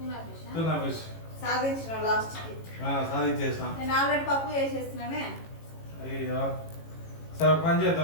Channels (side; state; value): right; late; 18 ms